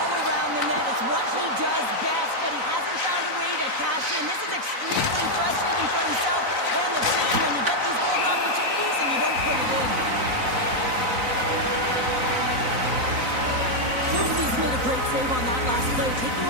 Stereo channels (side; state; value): left; late; 3.9 ms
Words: around the net. It's what he does best, but he hasn't found a way to cash in. This is extremely frustrating for himself and the team when you get these golden opportunities and you don't put it in. Hughes made a great save on that last play, taking